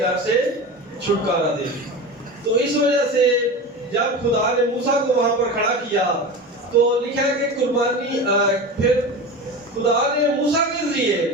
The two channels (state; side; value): normal; both; correlation 0.28